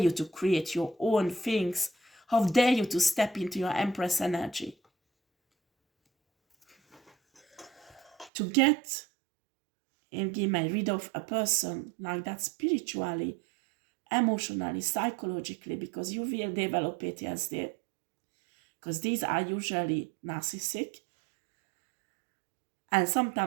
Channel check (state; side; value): drops out; left; at 8.3 s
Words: to create your own things? How dare you to step into your Empress energy? To get and get rid of a person like that spiritually, emotionally, psychologically, because you will develop PTSD. Because these are usually narcissistic, and